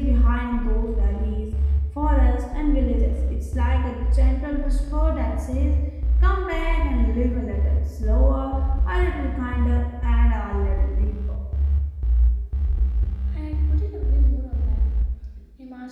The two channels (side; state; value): both; identical; correlation 1.00